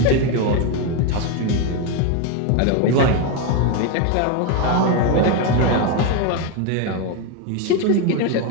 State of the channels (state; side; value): different; both; correlation 0.02